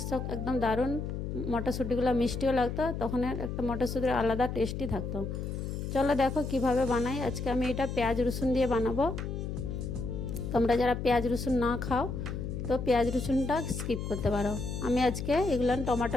একদম দারুণ। মটরশুঁটিগুলো মিষ্টিও লাগতো, তখন একটা মটরশুঁটির আলাদা টেস্টই থাকতো। চলো দেখো কিভাবে বানাই। আজকে আমি এটা পেঁয়াজ রসুন দিয়ে বানাবো। তোমরা যারা পেঁয়াজ রসুন না খাও তো পেঁয়াজ রসুনটা স্কিপ করতে পারো। আমি আজকে এগুলান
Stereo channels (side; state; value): left; noise; hum, 4 dB below the sound